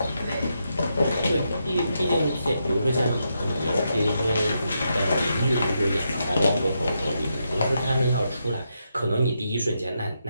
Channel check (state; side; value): inverted; both; correlation -0.83